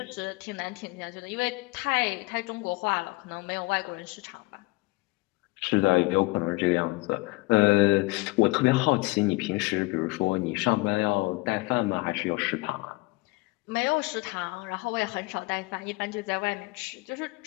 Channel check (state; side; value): quieter; right; 23.8 dB